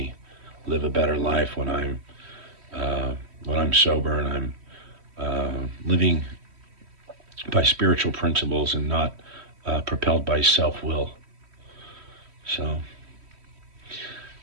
live a better life when I'm sober and I'm living by spiritual principles and not propelled by self-will. So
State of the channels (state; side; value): late; left; 3.1 ms